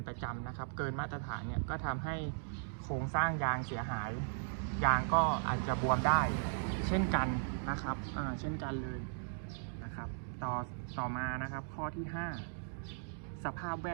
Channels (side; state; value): left; silent; digital silence